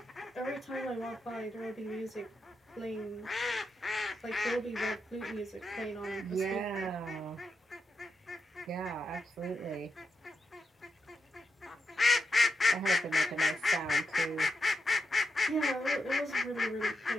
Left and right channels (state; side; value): normal; both; correlation 0.84